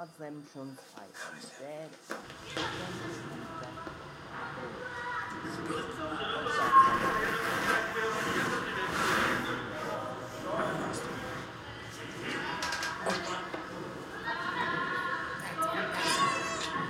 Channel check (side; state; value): both; identical; correlation 1.00